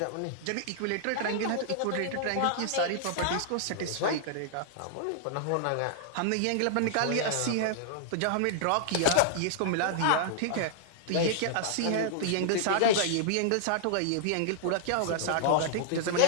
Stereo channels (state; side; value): different; both; correlation -0.01